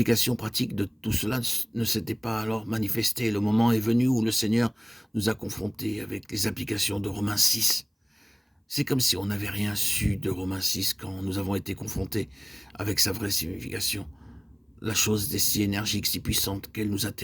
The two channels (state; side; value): identical; both; correlation 1.00